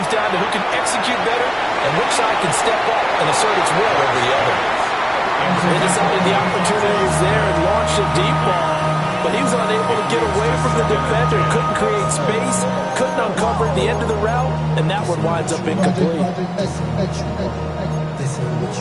down to who can execute better and which side can step up and assert its will over the other. They decided the opportunity was there and launched a deep ball, but he was unable to get away from the defender, couldn't create space, couldn't uncover the end of the route, and that one winds up incomplete.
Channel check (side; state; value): both; identical; correlation 1.00